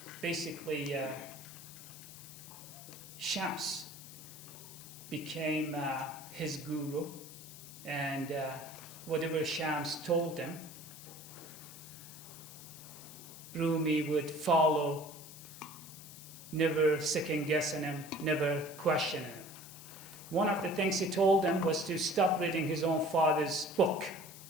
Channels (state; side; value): noise; left; hiss, 15 dB below the sound